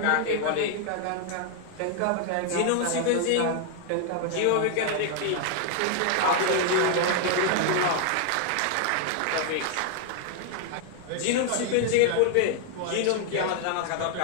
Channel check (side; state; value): both; different; correlation 0.00